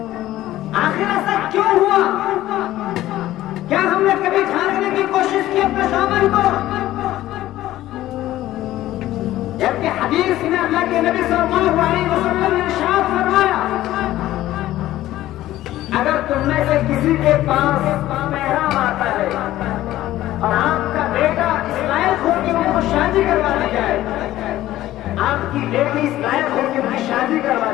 آخر ایسا کیوں ہوا؟ کیا ہم نے کبھی جھانکنے کی کوشش کی اپنے دامن کو؟ جبکہ حدیث میں اللہ کے نبی صلی اللہ علیہ وسلم نے ارشاد فرمایا، اگر تم میں سے کسی کے پاس محرم آتا ہے اور آپ کا بیٹا اس لائق ہو کہ ان کو شادی کروا دی جائے، آپ کی بیٹی اس لائق ہو کہ ان کی شادی کروا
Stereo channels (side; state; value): right; quieter; 14.7 dB